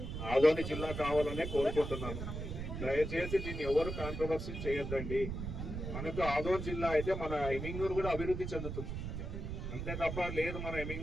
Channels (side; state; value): right; noise; rumble, 5 dB below the sound